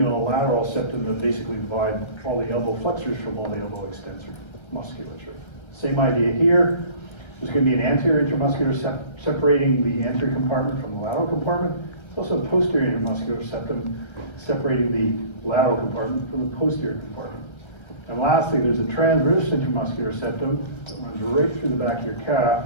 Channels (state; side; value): late; right; 1.3 ms